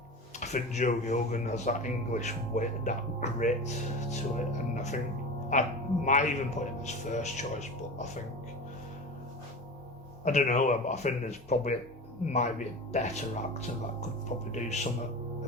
I think Joe Gilgan has that English wit, that grit to it, and I think I might even put him as first choice, but I don't know, but I think there's probably might be a better actor that could probably do something a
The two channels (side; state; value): both; normal; correlation 0.30